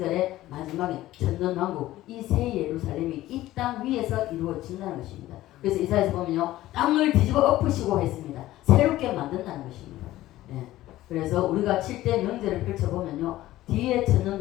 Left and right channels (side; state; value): right; quieter; 15.5 dB